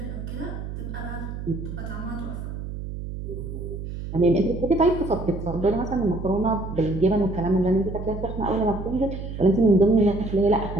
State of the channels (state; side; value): noise; right; hum, 7 dB below the sound